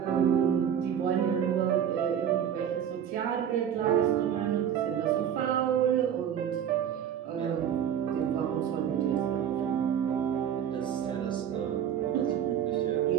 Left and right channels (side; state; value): left; quieter; 9.1 dB